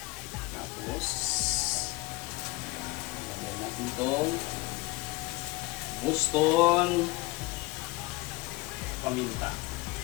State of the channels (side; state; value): right; quieter; 21.9 dB